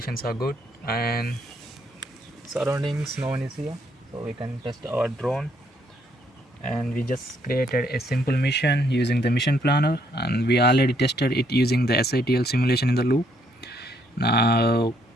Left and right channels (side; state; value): both; normal; correlation 0.71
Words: are good and surroundings, no one is here, so we can test our drone. And we just created a simple mission using the mission planner, and we already tested it using the SITL simulation in the loop. Now